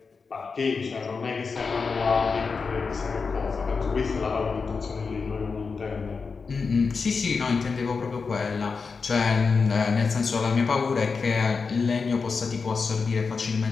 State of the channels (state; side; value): quieter; right; 4.9 dB